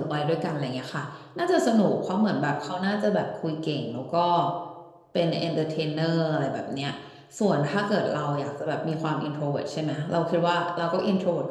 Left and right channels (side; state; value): both; identical; correlation 1.00